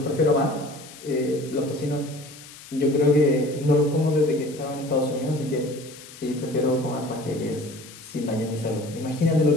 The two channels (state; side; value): noise; left; hiss, 18 dB below the sound